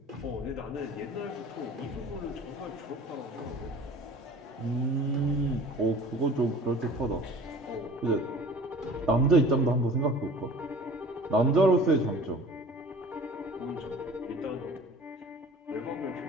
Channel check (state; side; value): normal; both; correlation 0.45